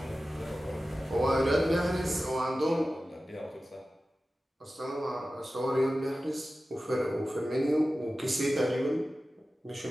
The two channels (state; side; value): normal; both; correlation 0.95